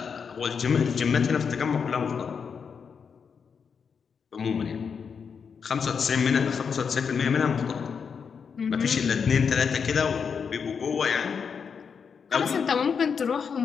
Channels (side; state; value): right; quieter; 6.3 dB